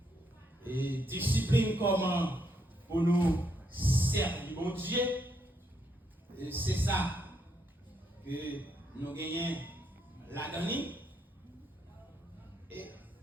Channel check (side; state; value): both; normal; correlation 0.76